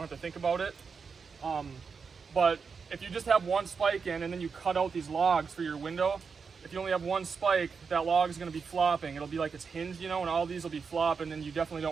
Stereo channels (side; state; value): left; quieter; 5.5 dB